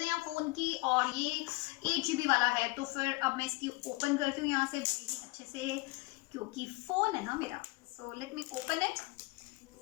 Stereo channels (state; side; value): quieter; right; 24.2 dB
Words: यहाँ फ़ोन की, और ये 8 GB वाला है। तो फिर अब मैं इसकी ओपन करती हूँ यहाँ से अच्छे से, क्योंकि फ़ोन है ना मेरा। So let me open it.